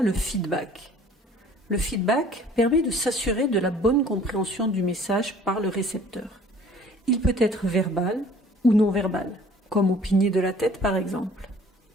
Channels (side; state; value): both; normal; correlation 0.52